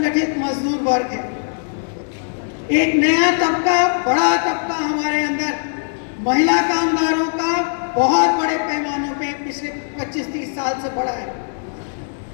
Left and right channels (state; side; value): silent; right; digital silence